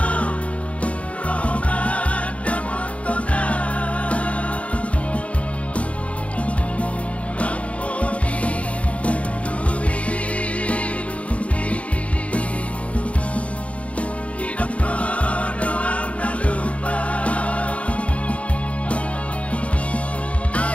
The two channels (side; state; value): right; late; 0.064 ms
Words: Roma dan Montona. Ramponi dumi hidup doang tak lupa.